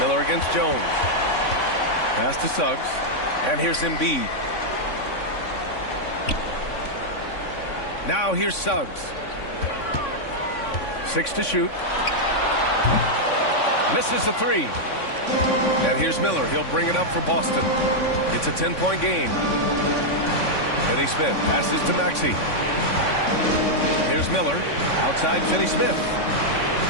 Miller against Jones. Pass to Suggs. And here's Embiid. Now here's Suggs. 6 to shoot. Misses the 3. And here's Miller. He'll bring it up for Boston. It's a 10-point game. Finney Smith passes to Maxey. Here's Miller. Outside Finney Smith.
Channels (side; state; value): right; late; 3.6 ms